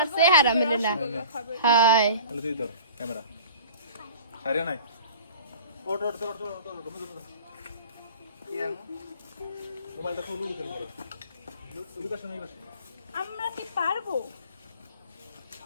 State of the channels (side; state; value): both; inverted; correlation -0.43